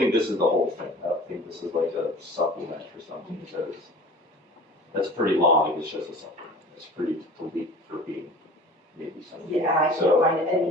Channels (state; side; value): normal; both; correlation 0.41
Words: this is the whole thing. I don't think this is like a supplement or something, because that's pretty long if it's just a supplement. It's pretty complete for being maybe something. Yeah, I can't find